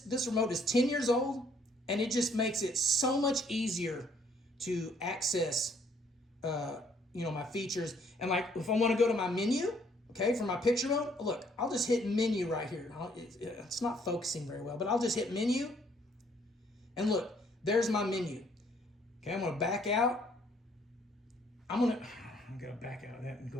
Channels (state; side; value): normal; both; correlation 0.65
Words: remote is 10 years old. And it just makes it so much easier to access, you know, my features. And like, if I want to go to my menu, okay, for my picture mode, look, I'll just hit menu right here. It's not focusing very well, but I'll just hit menu. And look, there's my menu. Okay, I'm going to back out. I'm going to back out of that and